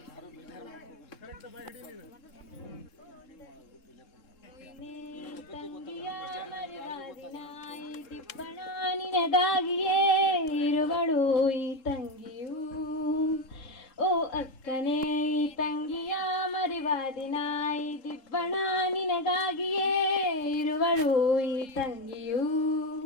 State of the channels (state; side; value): late; right; 3.7 ms